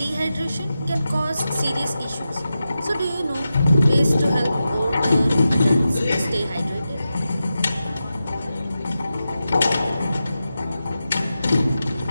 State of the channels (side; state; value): both; inverted; correlation -0.91